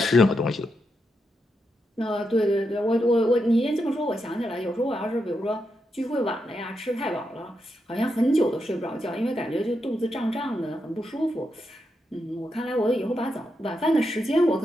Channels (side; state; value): both; normal; correlation 0.84